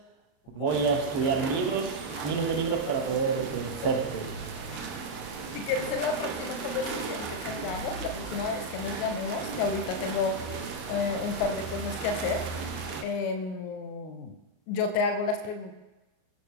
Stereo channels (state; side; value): late; right; 38 ms